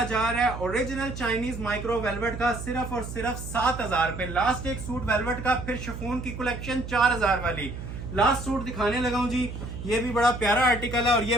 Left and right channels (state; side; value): noise; right; hum, 9 dB below the sound